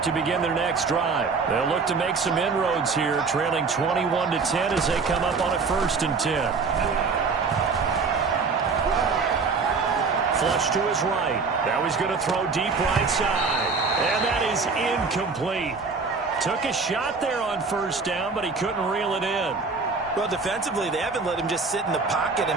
to begin their next drive. They'll look to make some inroads here, trailing 21-10 as they come up on a 1st and 10. flush to his right. Now he's going to throw deep right side. And that is incomplete. Took a shot there on first down, but he couldn't reel it in. Well, defensively, they haven't let him just sit in the pocket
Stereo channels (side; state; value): left; quieter; 4.6 dB